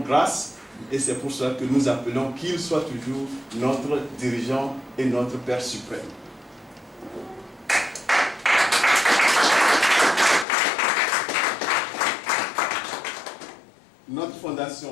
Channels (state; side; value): drops out; right; at 10.5 s